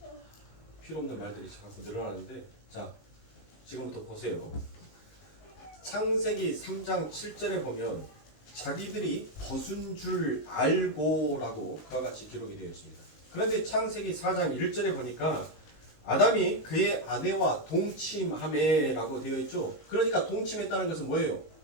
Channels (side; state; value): right; late; 19 ms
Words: 필요 없는 말들이 자꾸 늘어나는데 자 지금부터 보세요. 창세기 3장 7절에 보면 자기들이 벗은 줄 알고라고 그와 같이 기록이 되어 있습니다. 그런데 창세기 4장 1절에 보니까 아담이 그의 아내와 동침하매라고 되어 있죠. 그러니까 동침했다는 것은 뭐예요?